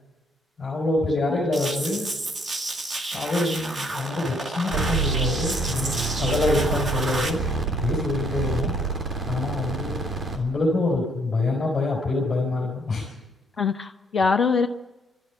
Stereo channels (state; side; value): normal; both; correlation 0.67